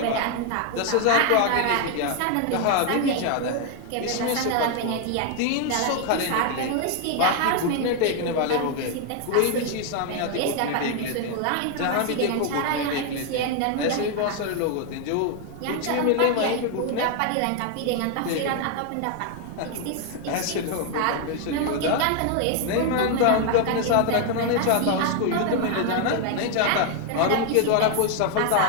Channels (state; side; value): different; both; correlation 0.01